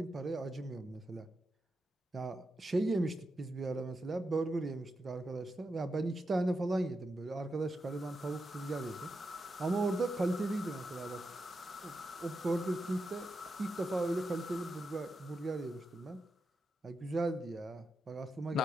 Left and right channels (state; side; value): normal; both; correlation 0.87